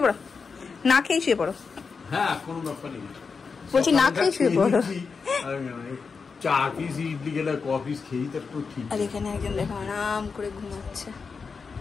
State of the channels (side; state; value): right; quieter; 5.1 dB